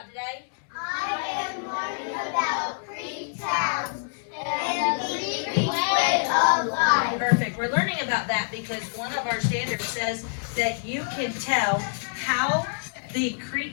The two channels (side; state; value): right; silent; 61 dB below the other